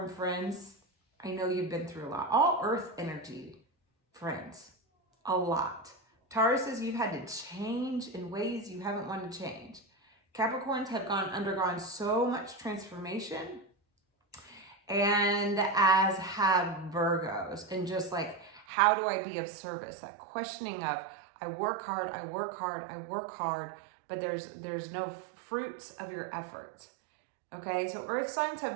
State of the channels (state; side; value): drops out; left; at 18.7 s